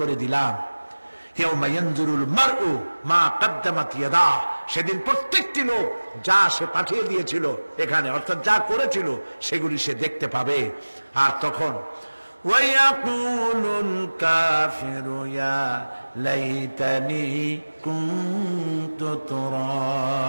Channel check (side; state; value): both; inverted; correlation -1.00